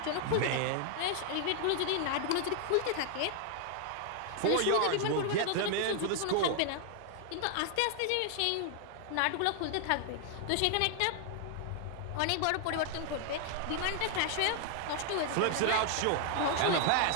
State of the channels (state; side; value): different; both; correlation 0.00